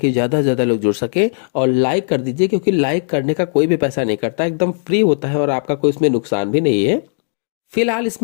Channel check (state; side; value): silent; right; digital silence